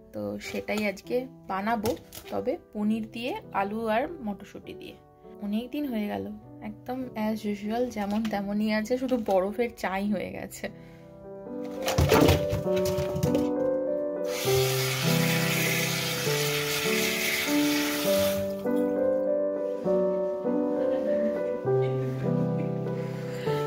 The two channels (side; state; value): both; identical; correlation 1.00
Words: তো সেটাই আজকে বানাবো, তবে পনির দিয়ে, আলু আর মটরশুঁটি দিয়ে। অনেক দিন হয়ে গেল, একদম অ্যাজ ইউজুয়াল যেমন তেমনই আছে, শুধু বরফের চাই হয়ে গেছে।